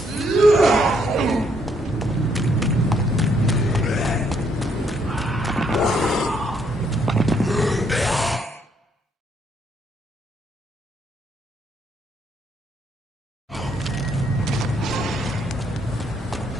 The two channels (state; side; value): normal; both; correlation 0.71